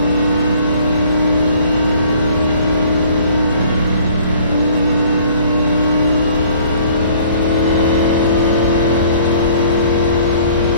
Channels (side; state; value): both; inverted; correlation -0.55